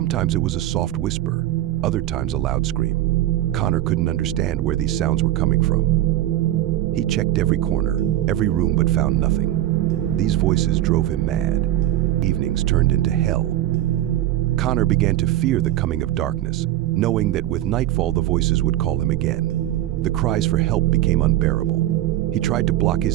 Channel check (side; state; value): left; quieter; 13.6 dB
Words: it was a soft whisper, other times a loud scream. Connor couldn't understand where these sounds were coming from. He checked every corner, every room, but found nothing. These voices drove him mad. Evenings turned into hell. Connor began to fear the coming of darkness, knowing that with nightfall the voices would call him again. The cries for help became unbearable. He tried to block